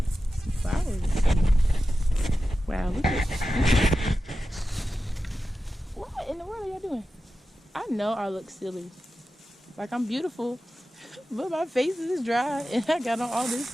some flowers. Wow, look at what in the world are y'all doing? I know I look silly. Like I'm beautiful, but my face is dry and I got on all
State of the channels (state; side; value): normal; both; correlation 0.93